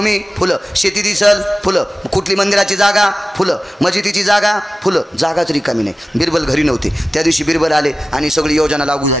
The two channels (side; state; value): both; normal; correlation 0.96